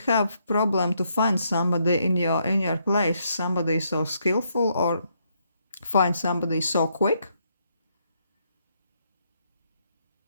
problem to find somebody in your place, somebody so skillful, or find somebody so quick.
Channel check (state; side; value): inverted; both; correlation -0.75